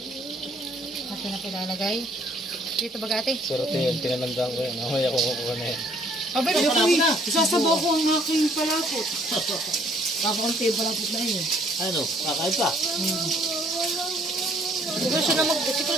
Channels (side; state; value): both; normal; correlation 0.62